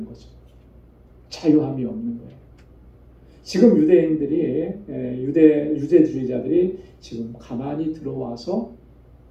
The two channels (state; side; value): identical; both; correlation 1.00